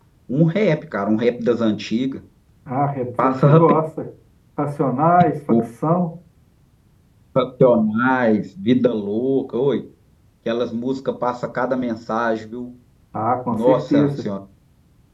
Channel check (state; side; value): identical; both; correlation 1.00